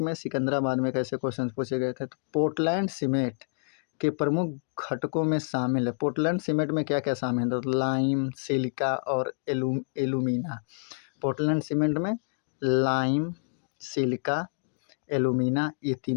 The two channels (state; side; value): silent; right; digital silence